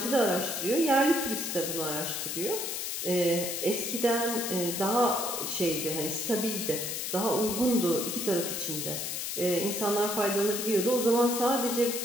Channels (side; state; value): left; noise; hiss, 3 dB below the sound